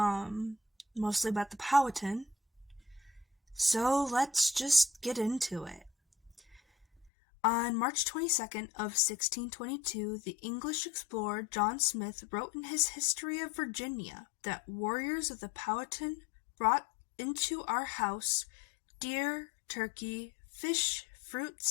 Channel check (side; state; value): right; drops out; at 7.1 s